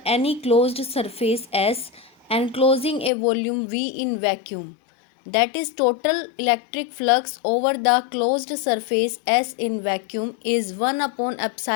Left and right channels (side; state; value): right; drops out; at 3.1 s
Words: any closed surface S enclosing a volume V in vacuum, that is total electric flux over the closed surface S in vacuum, is 1 upon